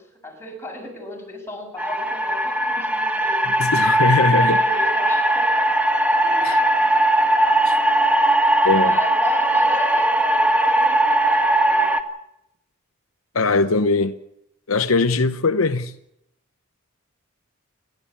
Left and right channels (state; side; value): normal; both; correlation 0.60